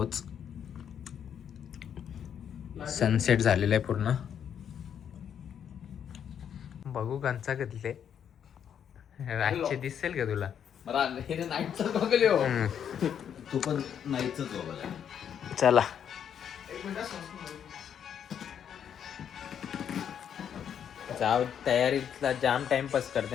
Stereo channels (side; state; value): right; quieter; 8.6 dB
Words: सनसेट झालेला आहे पूर्ण. बघू कंचा कधले रातचे दिसेल का तुला? तू पण नाहीच. चला जाऊ, तयारीतला जाम टाइमपास